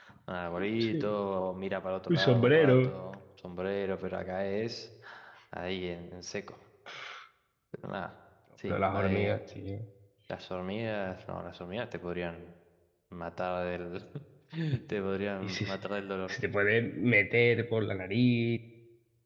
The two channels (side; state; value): both; identical; correlation 1.00